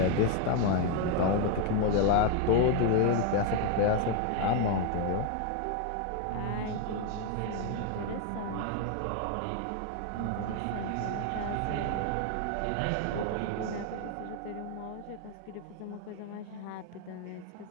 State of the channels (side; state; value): both; different; correlation 0.01